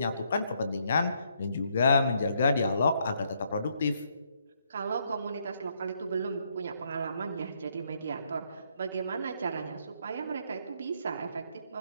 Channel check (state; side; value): inverted; both; correlation -0.73